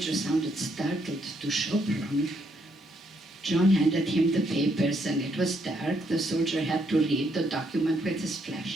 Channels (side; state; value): both; normal; correlation 0.74